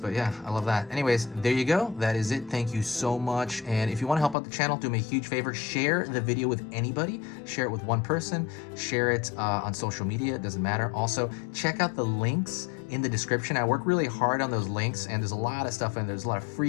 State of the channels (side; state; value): right; drops out; at 4.4 s